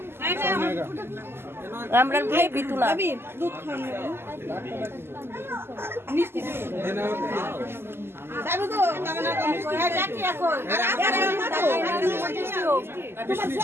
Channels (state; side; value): late; left; 0.12 ms